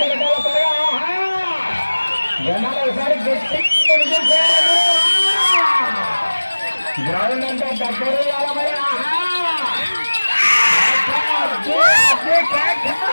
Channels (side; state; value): both; inverted; correlation -1.00